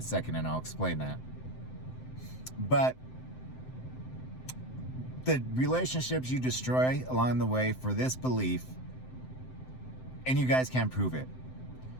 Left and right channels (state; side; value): late; right; 7.8 ms